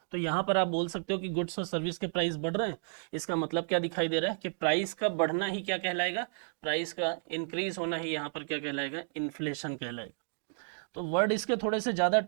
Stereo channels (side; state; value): left; silent; digital silence